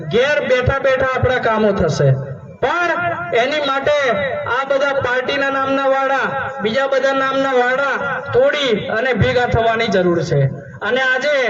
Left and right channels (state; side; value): identical; both; correlation 1.00